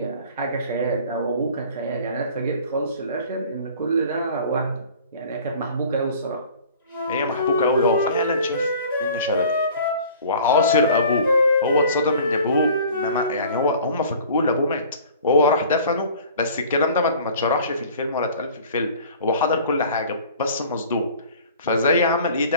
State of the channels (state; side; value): inverted; both; correlation -0.47